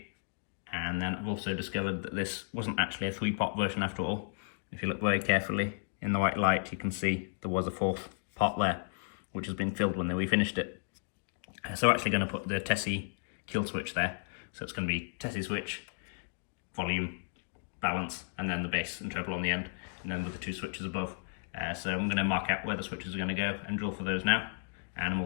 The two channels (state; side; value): silent; right; digital silence